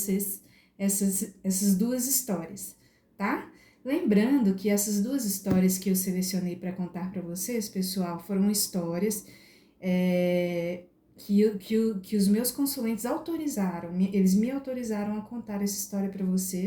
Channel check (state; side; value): identical; both; correlation 1.00